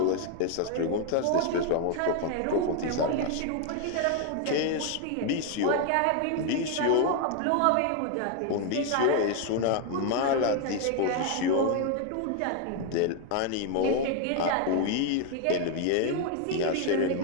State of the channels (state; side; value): different; both; correlation 0.01